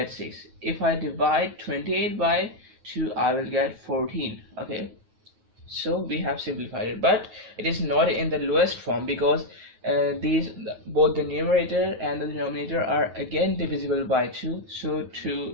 6. If I divide 28 by 2 I will get 14. Okay, so we have simplified it, but it is not in the lowest form, because both the numerator and the denominator are again divisible by 2. So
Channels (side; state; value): left; late; 9.3 ms